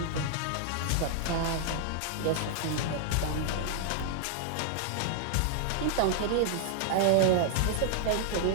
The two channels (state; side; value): different; both; correlation -0.01